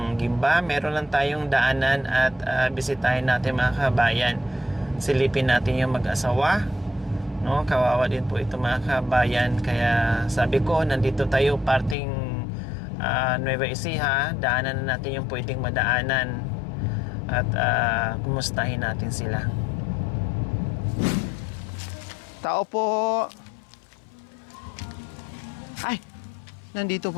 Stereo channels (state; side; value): drops out; right; at 12.0 s